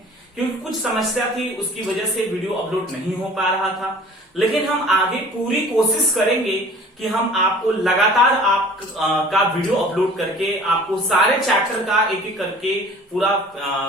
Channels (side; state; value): both; normal; correlation 0.47